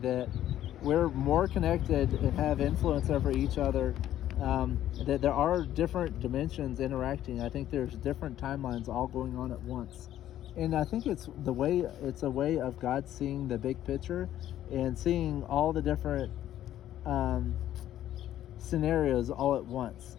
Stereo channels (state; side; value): quieter; right; 12.3 dB